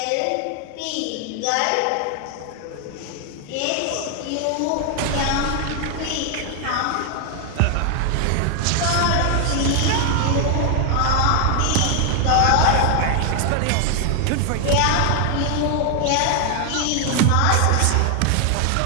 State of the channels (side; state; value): both; different; correlation 0.00